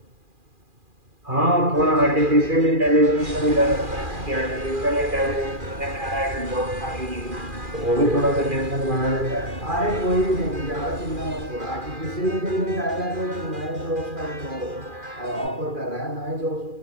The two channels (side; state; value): left; late; 2.4 ms